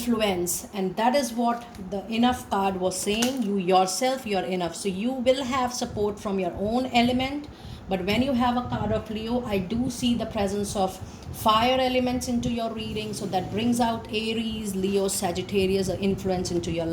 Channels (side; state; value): both; identical; correlation 1.00